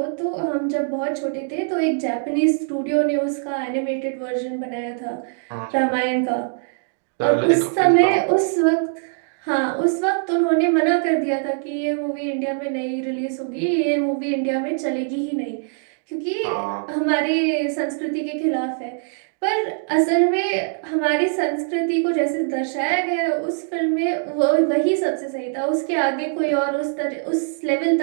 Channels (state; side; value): silent; left; digital silence